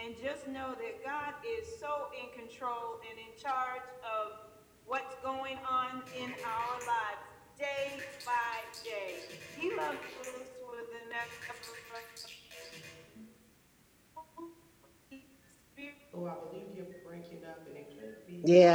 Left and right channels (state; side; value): identical; both; correlation 1.00